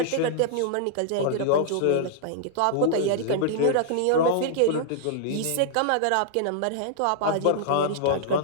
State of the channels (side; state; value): both; different; correlation -0.01